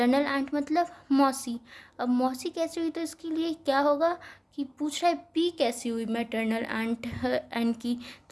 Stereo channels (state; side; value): identical; both; correlation 1.00